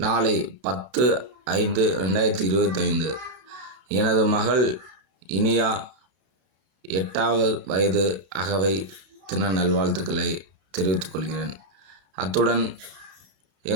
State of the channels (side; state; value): left; late; 32 ms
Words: 10/5/2025 எனது மகள் இனியா 8வது வயது அகவை தின நல்வாழ்த்துக்களை தெரிவித்துக் கொள்கிறேன். அத்துடன்